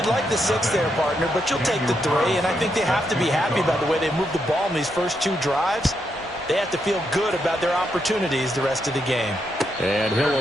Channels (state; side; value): normal; both; correlation 0.80